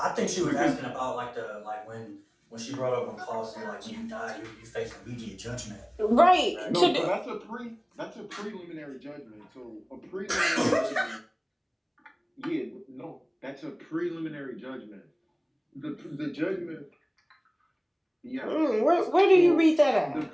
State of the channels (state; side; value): identical; both; correlation 1.00